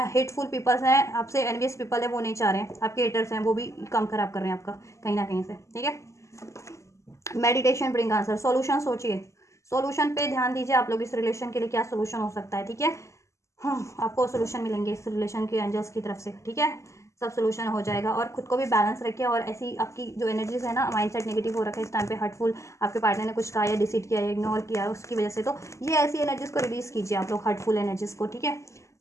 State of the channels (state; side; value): late; right; 0.14 ms